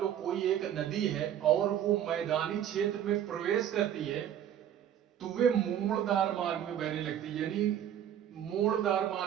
लो कोई एक नदी है और वो मैदानी क्षेत्र में प्रवेश करती है, तो वे मोड़दार मार्ग में बहने लगती है, यानी मोड़दार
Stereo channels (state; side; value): quieter; left; 10.2 dB